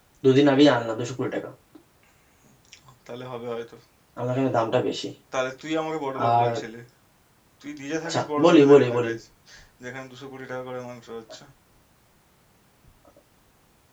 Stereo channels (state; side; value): identical; both; correlation 1.00